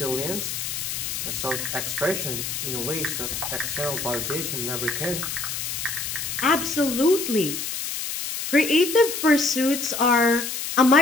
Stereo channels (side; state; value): left; noise; hiss, 4 dB below the sound